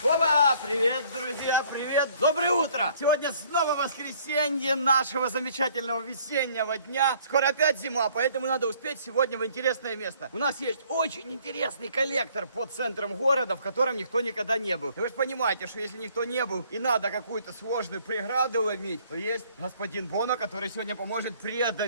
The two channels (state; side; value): inverted; both; correlation -0.60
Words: Опа! Привет, друзья, привет! Доброе утро! Сегодня снова воскресенье нашего замечательного весеннего дня. Скоро опять зима, поэтому надо успеть сегодня в интересное место. У нас есть очень интересный коллектор под центром города, в котором никто никогда не был. И вы же понимаете, что если никто не был и надо какую-то сложную преграду ломить, то есть господин Боно, который сегодня поможет